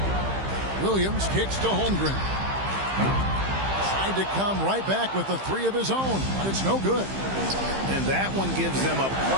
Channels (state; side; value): late; left; 15 ms